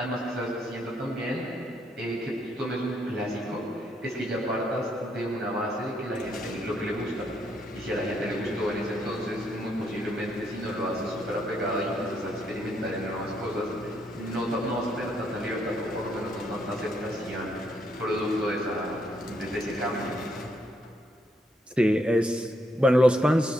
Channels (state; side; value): normal; both; correlation 0.75